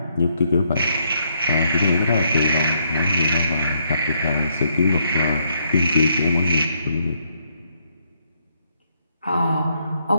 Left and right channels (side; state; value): both; inverted; correlation -0.74